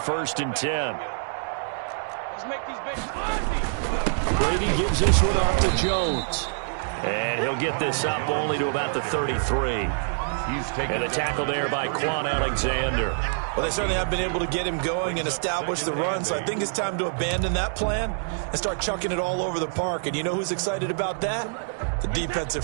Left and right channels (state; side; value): silent; left; digital silence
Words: and 10. Let's make these babies Brady gives this one off to Jones. And he'll get this up only to about the 33. And a tackle there by Quan Alexander. Well, they certainly have been able to get him going and establish the run, so I think it's time to abandon that plan and start chucking it all over the park. And you know who's excited about that? The defensive